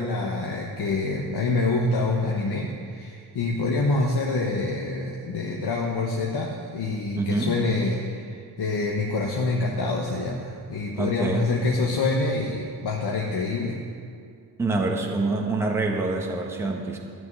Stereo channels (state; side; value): normal; both; correlation 0.39